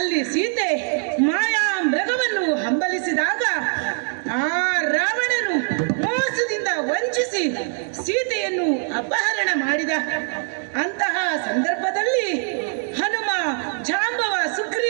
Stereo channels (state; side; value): silent; left; 55 dB below the other